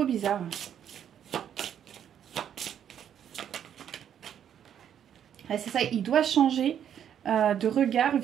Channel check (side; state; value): left; quieter; 9.3 dB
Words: bizarre. Ouais, c'est ça, il doit changer de regard